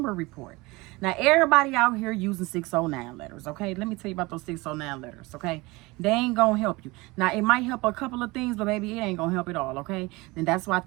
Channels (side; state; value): left; quieter; 22.9 dB